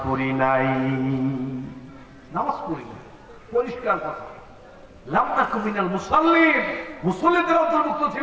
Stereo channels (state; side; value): identical; both; correlation 1.00